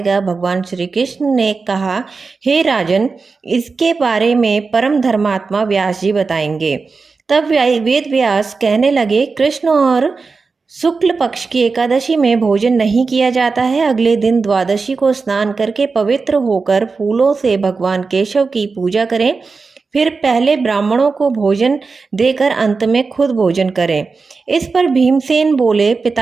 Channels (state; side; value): quieter; left; 4.4 dB